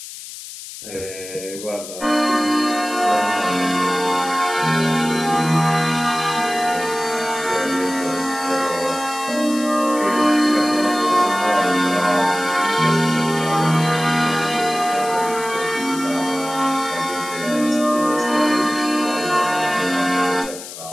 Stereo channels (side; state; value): left; noise; hiss, 12 dB below the sound